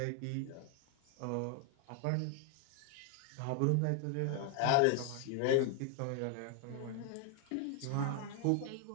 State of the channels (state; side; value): different; both; correlation 0.00